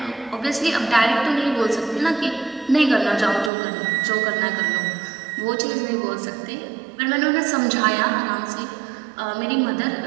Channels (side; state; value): left; drops out; at 3.5 s